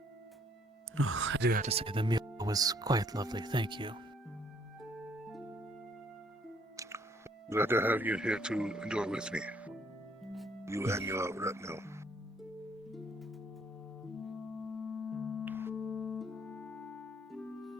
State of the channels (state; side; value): normal; both; correlation 0.64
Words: Oh, I do have to say, the meal was quite lovely, thank you. Glad to have you here to enjoy with me. You and your retinue.